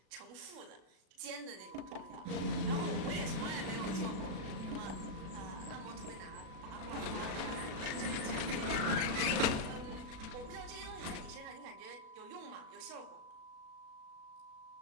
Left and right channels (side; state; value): left; late; 36 ms